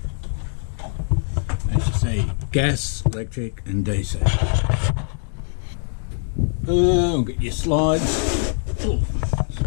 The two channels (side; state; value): right; silent; digital silence